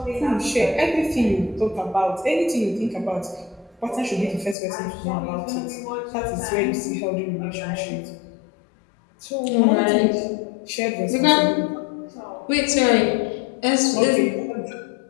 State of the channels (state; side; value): drops out; right; at 4.5 s